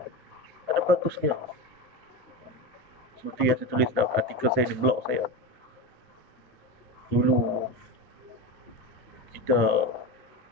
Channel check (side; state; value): both; normal; correlation 0.22